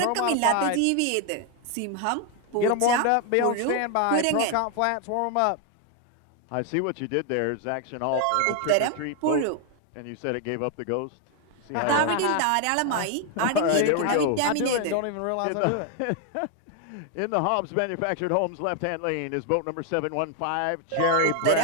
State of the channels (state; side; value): different; both; correlation 0.01